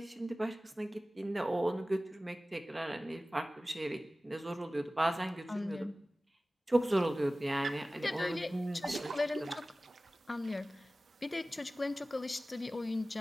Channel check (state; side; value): normal; both; correlation 0.97